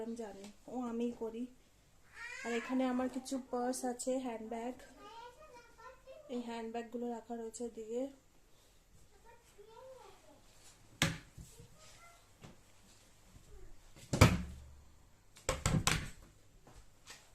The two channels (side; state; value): both; identical; correlation 1.00